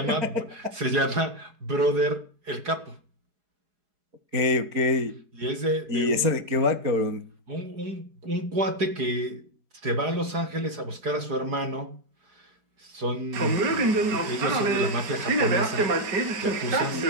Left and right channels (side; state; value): left; late; 4.8 ms